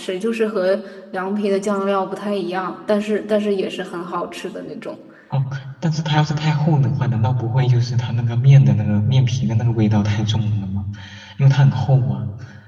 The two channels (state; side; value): identical; both; correlation 1.00